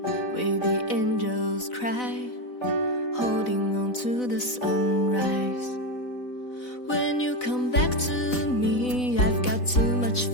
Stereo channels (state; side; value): late; right; 4.0 ms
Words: where the angels cry, holding on to the sunrise. When you come back to me, I've got too much